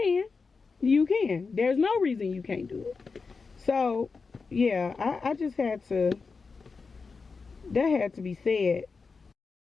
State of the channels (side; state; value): right; quieter; 4.7 dB